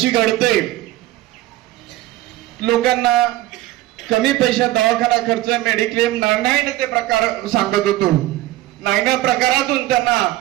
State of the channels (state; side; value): quieter; left; 16.2 dB